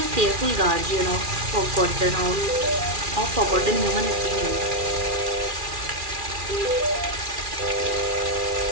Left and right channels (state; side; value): late; left; 2.4 ms